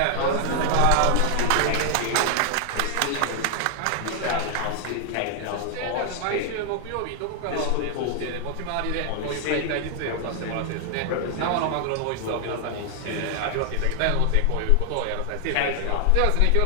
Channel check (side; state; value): both; different; correlation 0.00